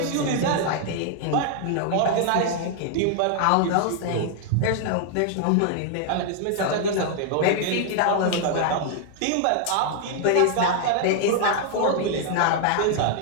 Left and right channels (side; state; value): both; different; correlation 0.00